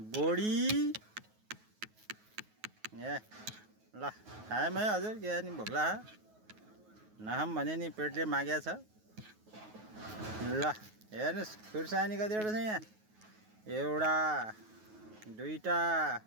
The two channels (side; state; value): left; late; 9.4 ms